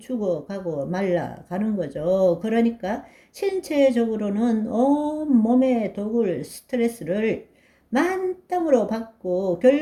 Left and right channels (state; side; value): identical; both; correlation 1.00